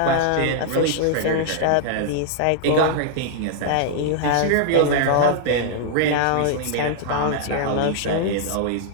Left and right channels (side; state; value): both; different; correlation -0.01